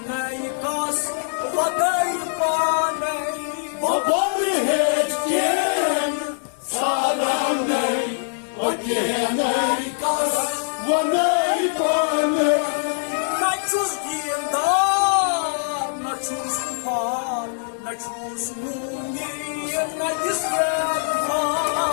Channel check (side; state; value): right; silent; digital silence